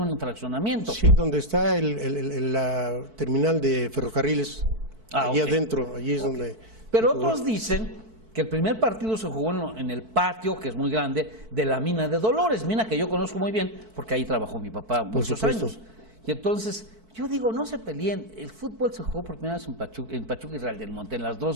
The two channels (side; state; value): left; late; 4.5 ms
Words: fraccionamiento. Sí, donde está la terminal de ferrocarriles, allí adentro, allí es donde... Pero otros dicen que el primer partido se jugó en el patio, que es muy grande, de la mina de Dolores, mina que yo conozco muy bien, porque ahí trabajó mi papá muchos años. Y entonces, yo digo, no se peleen, el fútbol se jugó por primera vez en Pachuca y Real del Monte, en las